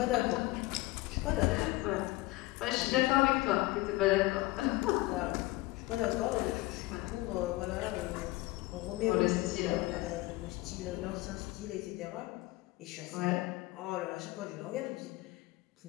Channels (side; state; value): right; quieter; 19.8 dB